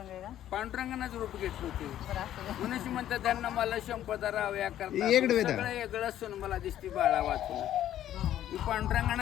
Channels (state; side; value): quieter; right; 11.9 dB